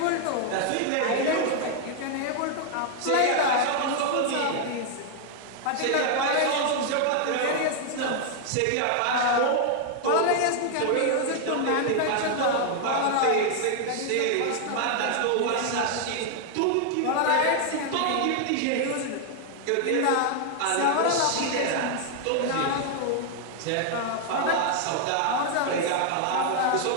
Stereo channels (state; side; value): different; both; correlation 0.00